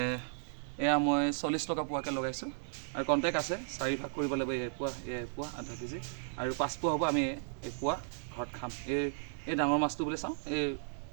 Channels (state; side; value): silent; left; digital silence